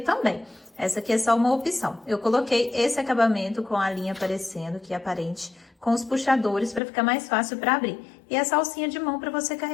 também. Essa aqui é só uma opção. Eu coloquei esse acabamento com a linha aparecendo, que é aparente, com os puxadores para ficar mais fácil para abrir. E essa alcinha de mão para você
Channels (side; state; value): right; drops out; at 6.8 s